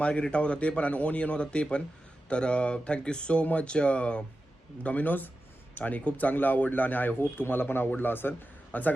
होता ते पण, आणि ओनियन होता ते पण. तर थँक्यू सो मच डॉमिनोज, आणि खूप चांगलं आवडलं आणि आय होप तुम्हाला पण आवडलं असेल. आणि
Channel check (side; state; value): both; normal; correlation 0.92